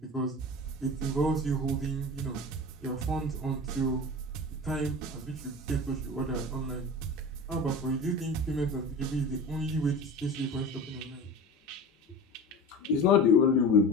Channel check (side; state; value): both; normal; correlation 0.33